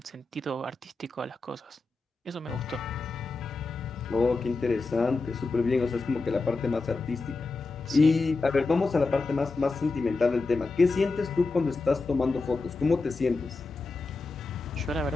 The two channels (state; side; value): quieter; right; 3.7 dB